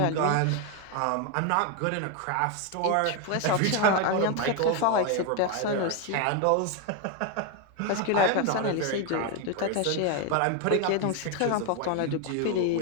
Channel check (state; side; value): different; both; correlation 0.01